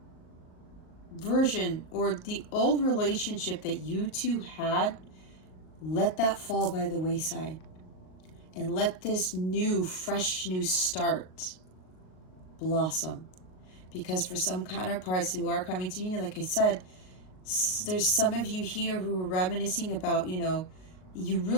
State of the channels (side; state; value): right; late; 38 ms